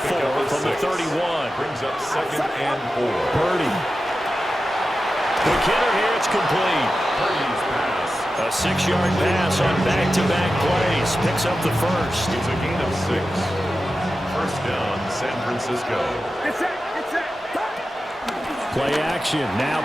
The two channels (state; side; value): normal; both; correlation 0.92